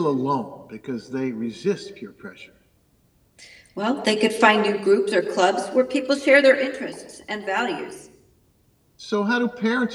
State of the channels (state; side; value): identical; both; correlation 1.00